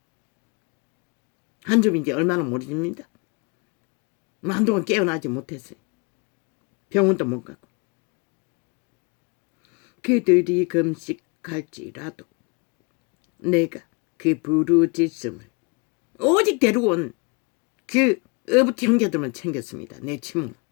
한 줌인지 얼마나 모릅니다. 한동안 깨어나지 못했어요. 병원도 못 가고. 그들이 금식할지라도 내가 그 부르짖음을 오직 데리고 온 그 어부티 형제들만 챙겼습니다. 내 친구.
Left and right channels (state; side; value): quieter; right; 31.0 dB